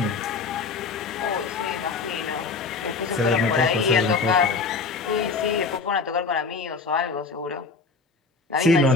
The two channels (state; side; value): quieter; right; 4.4 dB